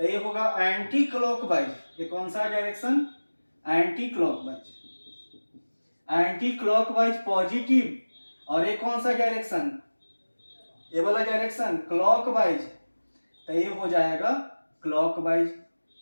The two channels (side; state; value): both; inverted; correlation -1.00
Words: ये होगा एंटी क्लॉकवाइज। ये कौन सा direction? Anti clockwise. Anti clockwise positive. और ये कौन सा डायरेक्शन? ये वाला डायरेक्शन क्लॉकवाइज, तो ये हो जाएगा clockwise.